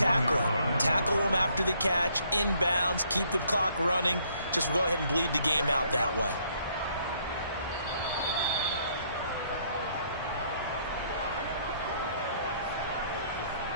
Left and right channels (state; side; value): inverted; both; correlation -0.67